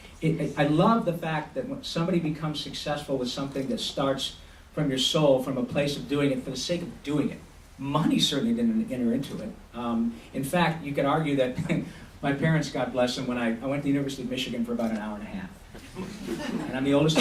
I love the fact that when somebody becomes successful with something that starts from your soul, from a place of doing it for the sake of doing it. Money certainly didn't enter into it. In fact, you could argue that my parents, God bless them, when I went to the University of Michigan for about an hour and a half. And I'm the oldest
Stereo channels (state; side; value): identical; both; correlation 1.00